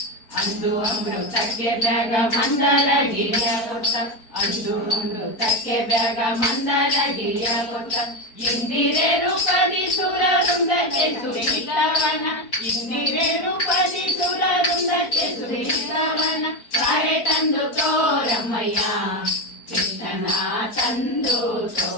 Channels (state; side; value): late; right; 4.5 ms